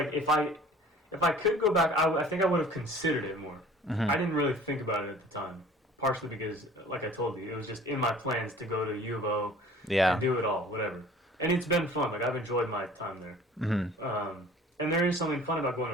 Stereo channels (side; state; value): both; normal; correlation 0.49